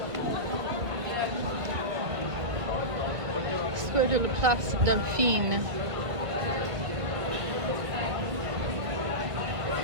Square de la Place Dauphine.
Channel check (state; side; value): late; left; 1.5 ms